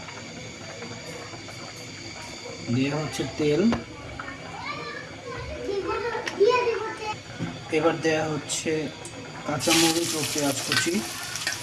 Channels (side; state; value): both; identical; correlation 1.00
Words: দেওয়া হচ্ছে তেল, এবার দেওয়া হচ্ছে কাঁচামরিচ ও পেঁয়াজ কুচি।